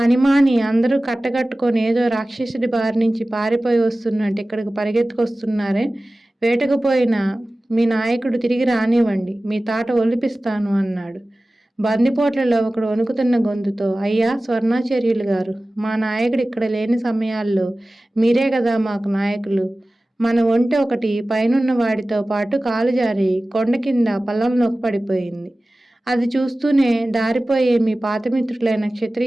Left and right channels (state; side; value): normal; both; correlation 0.97